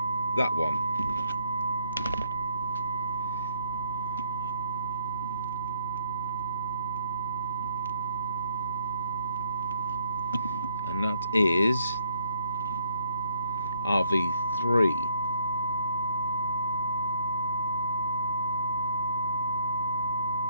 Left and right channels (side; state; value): both; inverted; correlation -0.67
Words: that one. And that is RV3.